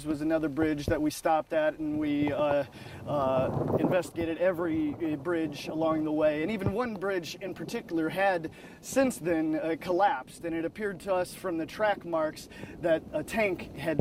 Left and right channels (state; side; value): identical; both; correlation 1.00